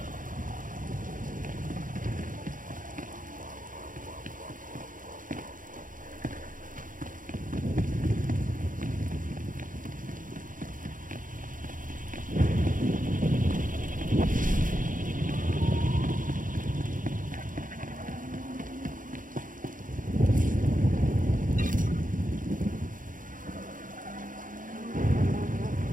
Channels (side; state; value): left; late; 0.39 ms